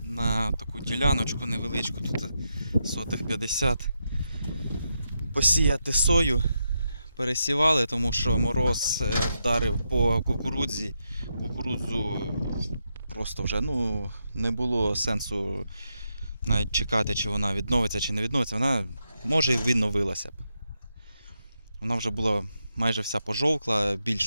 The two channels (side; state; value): both; inverted; correlation -0.84